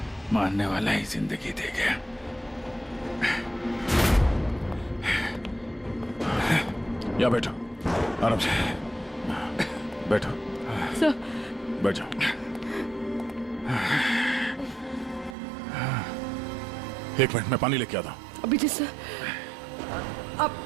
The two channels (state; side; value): drops out; left; at 15.4 s